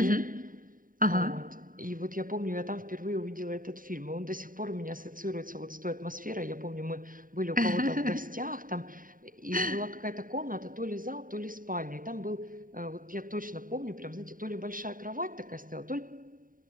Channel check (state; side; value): late; left; 0.40 ms